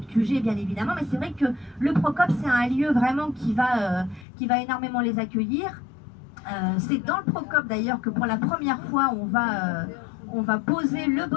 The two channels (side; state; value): right; drops out; at 4.2 s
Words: QG bien évidemment, mais c'est vrai que le Procope c'est un lieu vraiment qui va énormément les accueillir. C'est dans le Procope d'ailleurs que pour la première fois on va poser le